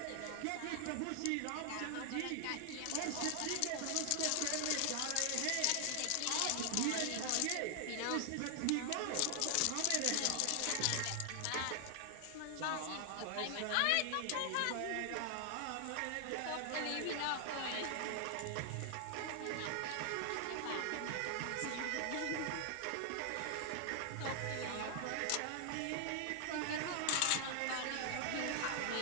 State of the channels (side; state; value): both; different; correlation 0.00